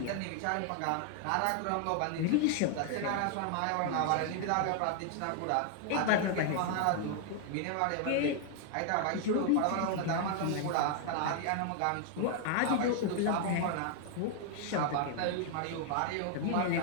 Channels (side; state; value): both; different; correlation 0.00